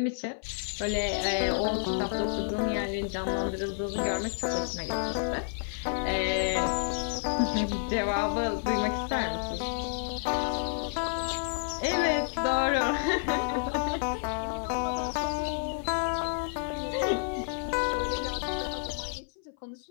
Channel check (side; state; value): right; silent; 57 dB below the other